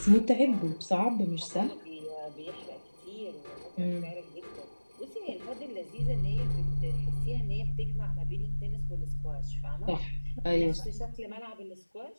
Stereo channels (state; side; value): inverted; both; correlation -1.00